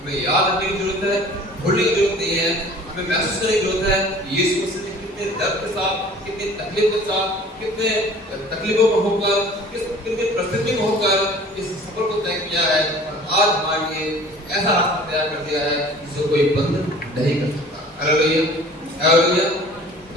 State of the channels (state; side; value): normal; both; correlation 0.47